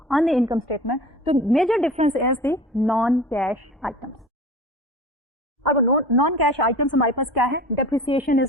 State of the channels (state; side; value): normal; both; correlation 0.39